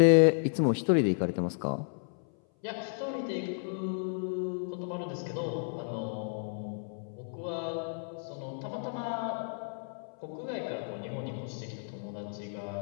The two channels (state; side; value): silent; right; 56 dB below the other